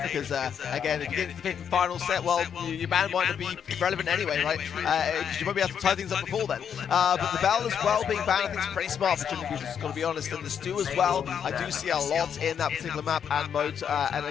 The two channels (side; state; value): right; quieter; 7.9 dB